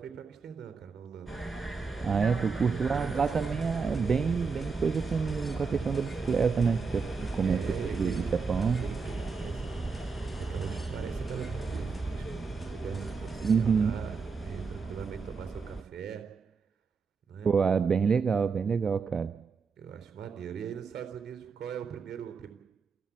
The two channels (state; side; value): quieter; left; 5.2 dB